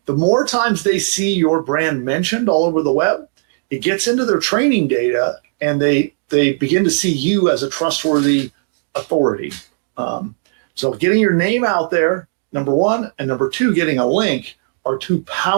The more times they see your brand mentioned all over the web, it gets into their training data, and they begin to see you as a trustworthy authority. So getting your name out there, number one, and number two, getting a link are two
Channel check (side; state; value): left; silent; digital silence